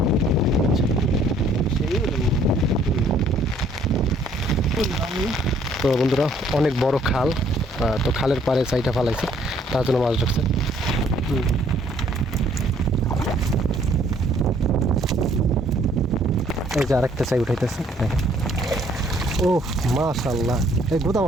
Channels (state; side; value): normal; both; correlation 0.62